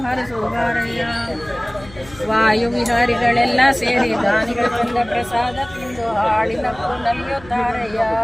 ಹರಸುವರಯ್ಯ. ವಾಯು ವಿಹಾರಿಗಳೆಲ್ಲ ಸೇರಿ ದಾನಿಗಳ ತಂದ ಪ್ರಸಾದ ತಿಂದು ಹಾಡಿನಪ್ಪು ನಲಿಯುತ್ತಾರಯ್ಯ.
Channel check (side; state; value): left; noise; hum, 20 dB below the sound